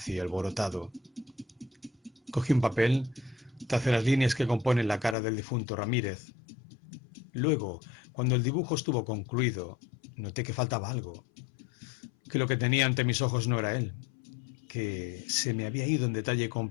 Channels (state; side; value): drops out; right; at 5.2 s